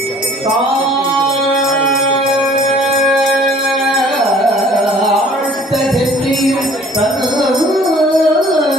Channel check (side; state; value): both; normal; correlation 0.53